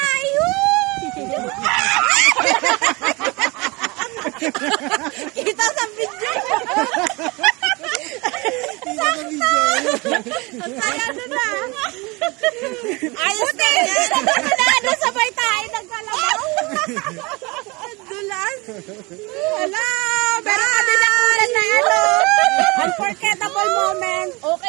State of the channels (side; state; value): left; quieter; 25.6 dB